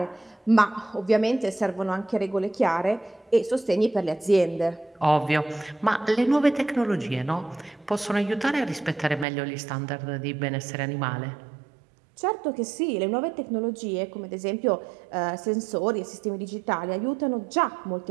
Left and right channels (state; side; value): drops out; left; at 9.2 s